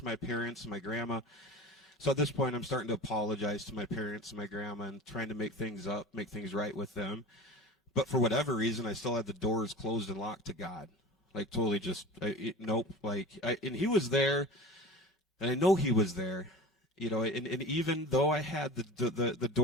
my parents and my grandma. So at this point, I'm starting to apologize to my parents and my grandma and trying to make things up, make things right with them. But for whatever reason, I still had the doors closed and locked to God. Like, totally just, nope. And he was there, and I know he was there. And even though I had the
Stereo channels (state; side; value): normal; both; correlation 0.36